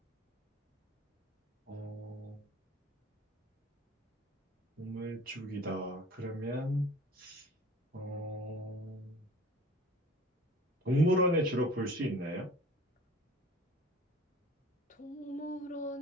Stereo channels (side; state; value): both; normal; correlation 0.45